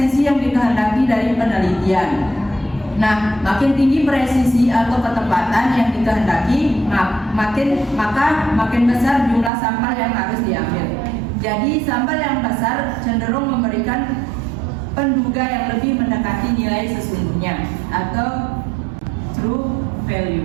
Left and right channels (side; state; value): left; drops out; at 9.5 s